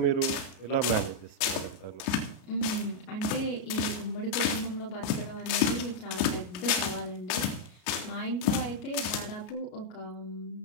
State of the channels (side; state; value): right; late; 34 ms